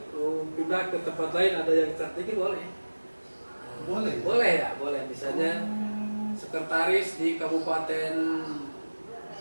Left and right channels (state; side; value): inverted; both; correlation -1.00